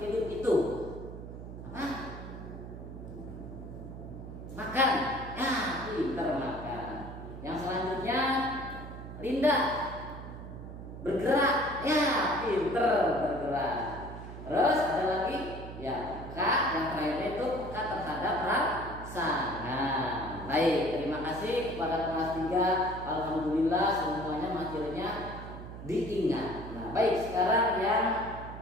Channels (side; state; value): right; noise; hum, 11 dB below the sound